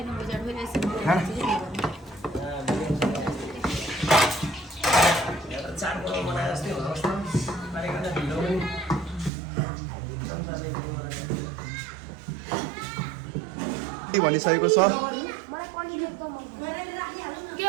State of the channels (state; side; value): drops out; left; at 9.3 s